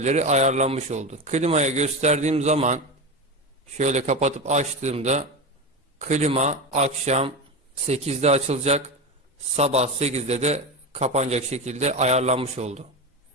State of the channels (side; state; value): both; normal; correlation 0.20